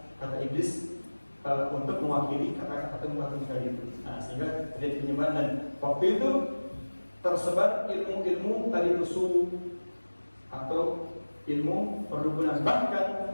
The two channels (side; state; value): both; inverted; correlation -1.00